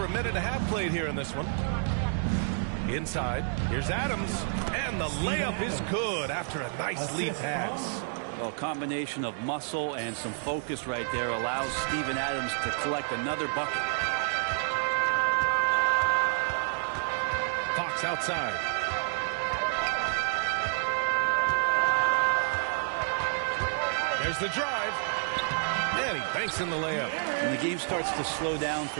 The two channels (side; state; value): left; silent; digital silence